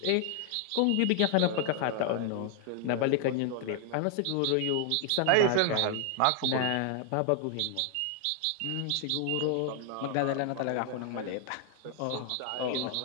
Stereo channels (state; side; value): different; both; correlation 0.00